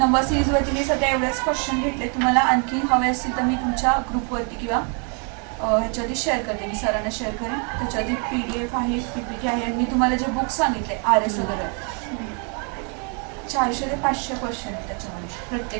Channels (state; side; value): quieter; left; 38.2 dB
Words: सिरीजवरती मी सध्या एवढेच क्वेश्चन घेतले. तुम्हाला आणखी हवे असतील तर मी तुमच्या ग्रुपवरती किंवा ह्याच्यावरती शेअर करते, मी सरांना शेअर करेन. त्याच्यावरती PDF आहे, PPT आहे. आणि मी तुम्हाला जे बुक सांगितले RS वगैरे 400 ते 500 क्वेश्चन आहेत त्याच्यामध्ये